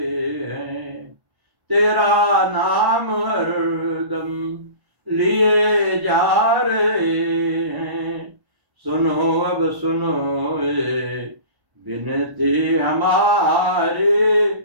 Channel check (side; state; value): left; late; 1.1 ms